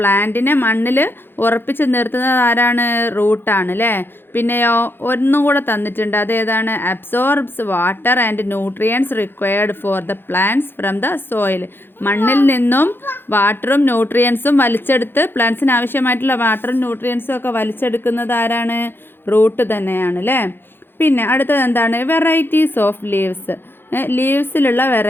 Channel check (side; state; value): right; late; 0.10 ms